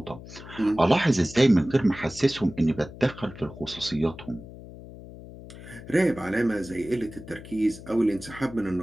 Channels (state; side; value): noise; left; hum, 15 dB below the sound